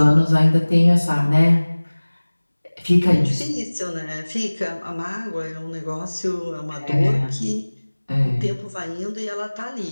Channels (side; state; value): both; inverted; correlation -1.00